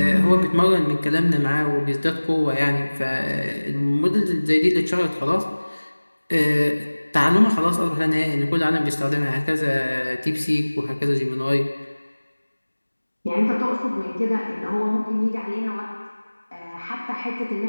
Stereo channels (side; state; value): both; inverted; correlation -1.00